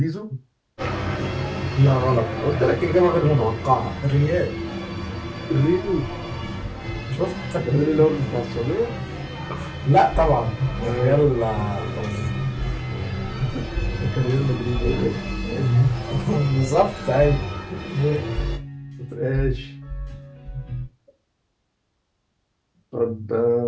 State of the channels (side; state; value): both; identical; correlation 1.00